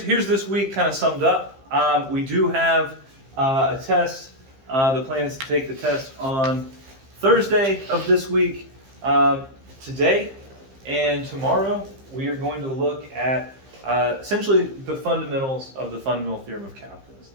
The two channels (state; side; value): late; left; 15 ms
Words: this week kind of summed up. We do have a test. The plan is to take the test on Thursday of this week. Today and tomorrow, we are going to look at essentially the fundamentals of the fundamental theorem of calculus.